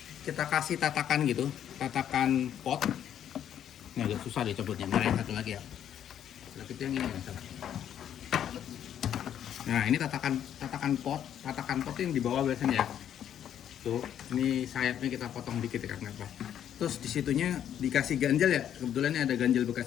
kita kasih tatakan gitu, tatakan pot. Ini agak susah dicabutnya, nah yang satu lagi ya. Itu yang ini nggak salah. Nah ini tatakan pot yang di bawah biasanya ya. Tuh, ini sayapnya kita potong dikit ya karena apa? Terus disitunya dikasih ganjel ya. Kebetulan ini ada ganjel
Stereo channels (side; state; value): right; quieter; 9.9 dB